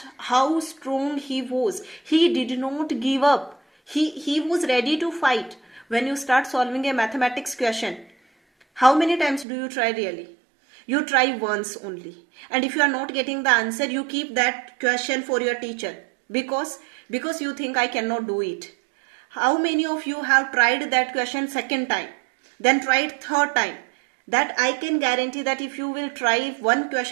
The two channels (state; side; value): drops out; left; at 9.5 s